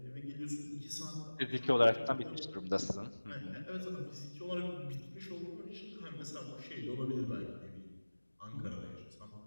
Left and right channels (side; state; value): both; inverted; correlation -1.00